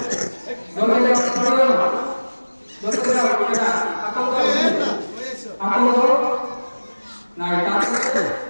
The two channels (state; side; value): inverted; both; correlation -1.00